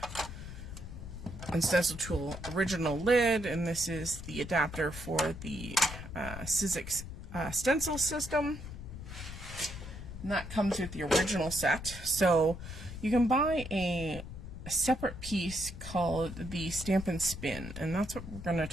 and stencil tool original lid, and this is the adapter for the Sizzix stencil system, and that comes with the original set. So you can buy a separate piece called the stamp and spin, and that's what we're going to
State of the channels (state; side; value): noise; left; rumble, 10 dB below the sound